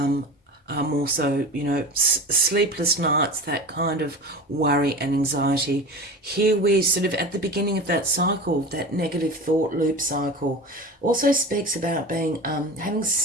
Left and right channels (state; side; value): normal; both; correlation 0.31